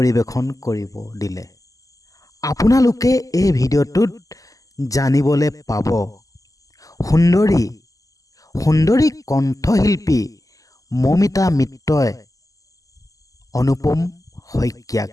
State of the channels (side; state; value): right; late; 0.17 ms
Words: কৰিব দিলে। আপোনালোকে এই ভিডিঅ'টোত জানিবলৈ পাব সুন্দৰী কণ্ঠশিল্পী মৌমিতা মিত্ৰই অনুপম শইকীয়াক